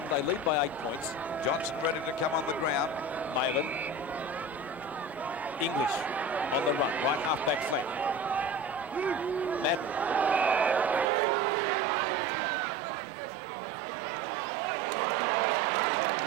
They lead by 8 points. Johnson ready to come on the ground. Malin. English on the run, right half-back flank. Madden. Over towards Hunter. Hunter gets clear up towards the half-forward line. Oh, and Ditchburn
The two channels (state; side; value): drops out; left; at 11.1 s